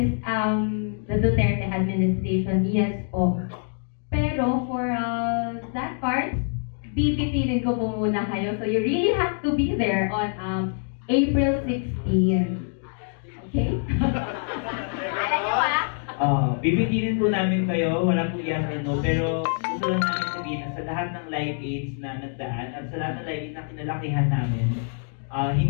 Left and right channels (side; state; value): right; silent; 55 dB below the other